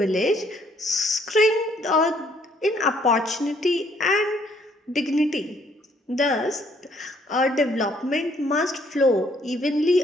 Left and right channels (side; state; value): both; normal; correlation 0.66